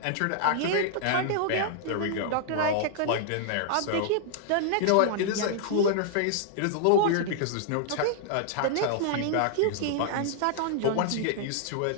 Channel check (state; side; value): different; both; correlation -0.01